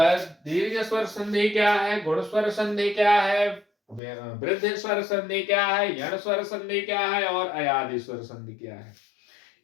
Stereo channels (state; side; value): drops out; right; at 4.0 s